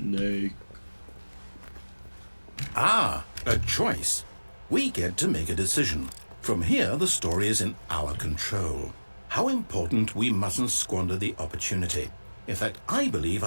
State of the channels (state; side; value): inverted; both; correlation -1.00